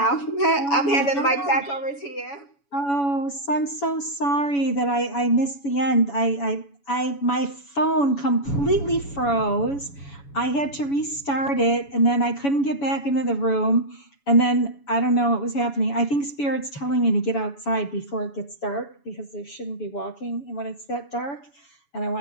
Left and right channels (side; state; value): right; late; 7.1 ms